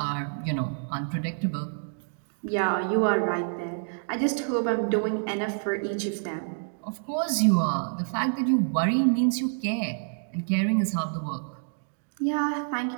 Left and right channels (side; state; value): left; silent; digital silence